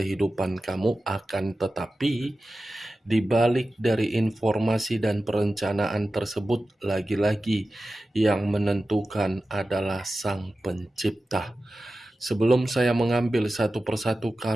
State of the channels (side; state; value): both; normal; correlation 0.94